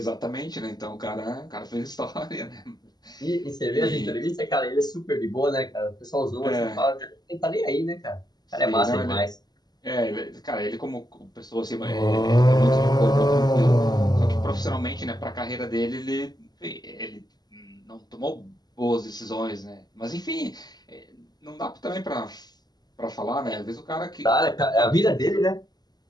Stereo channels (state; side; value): late; right; 0.20 ms